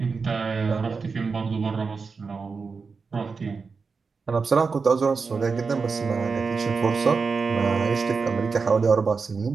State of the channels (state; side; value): quieter; left; 4.9 dB